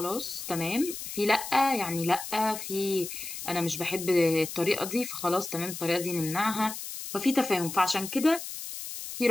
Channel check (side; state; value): left; noise; hiss, 8 dB below the sound